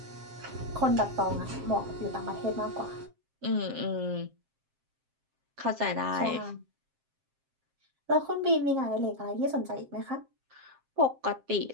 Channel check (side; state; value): left; late; 7.5 ms